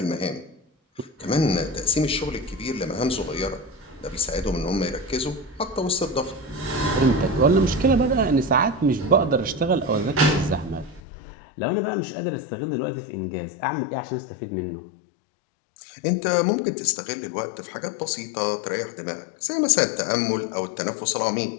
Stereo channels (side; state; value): right; drops out; at 11.0 s